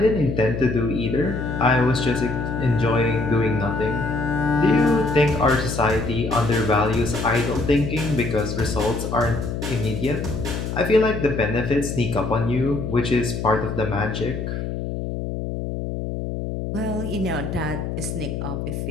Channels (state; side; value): noise; left; hum, 4 dB below the sound